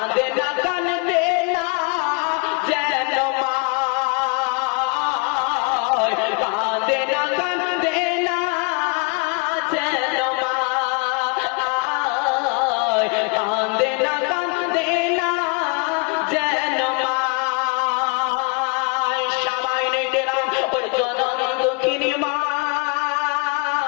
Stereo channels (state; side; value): quieter; right; 34.0 dB